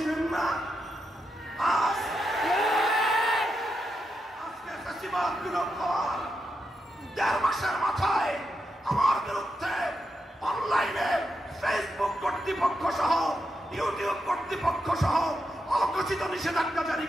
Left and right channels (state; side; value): normal; both; correlation 0.85